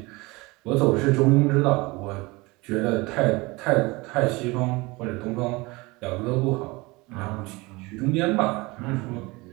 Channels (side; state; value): left; quieter; 23.8 dB